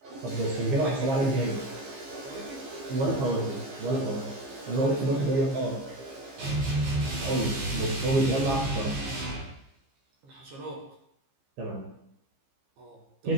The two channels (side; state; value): left; late; 15 ms